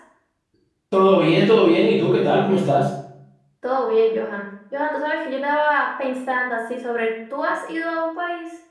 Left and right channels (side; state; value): both; identical; correlation 1.00